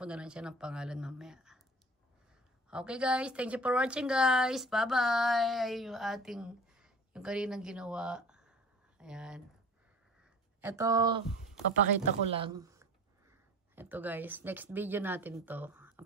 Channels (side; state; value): both; normal; correlation 0.43